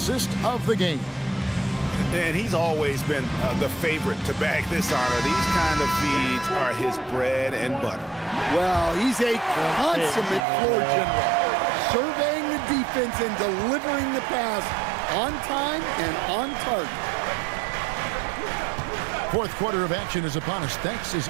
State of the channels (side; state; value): left; drops out; at 10.4 s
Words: of the game. And he's always been the favorite to bag this honor. These kind of feeds are his bread and butter. Well, he's a consummate floor general, surveying the defense and delivering the pass on time and on target. Fourth quarter of action is upon us. Thanks as